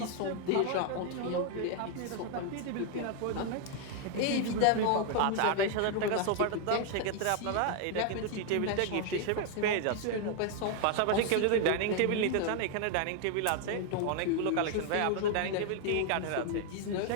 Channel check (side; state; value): both; different; correlation 0.00